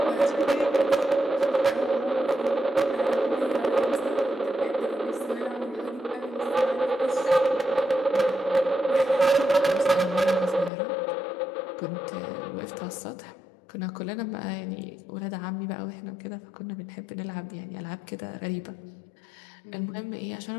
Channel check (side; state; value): right; drops out; at 10.7 s